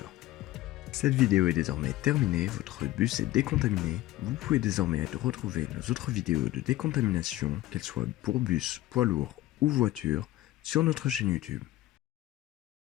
Cette vidéo est désormais terminée, votre bus est décontaminé. Vous pouvez désormais retrouver nos autres vidéos de décontamination, qu'elles soient pour bus, poids lourd ou voiture, sur notre chaîne YouTube.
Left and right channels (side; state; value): right; quieter; 16.1 dB